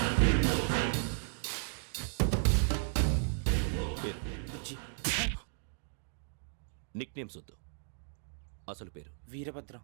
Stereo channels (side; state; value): left; silent; digital silence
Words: పేరు నిక్ నేమ్స్ వద్దు, అసలు పేరు. వీరభద్రం.